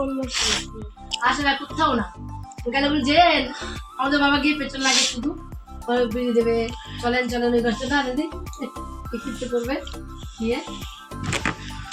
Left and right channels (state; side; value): identical; both; correlation 1.00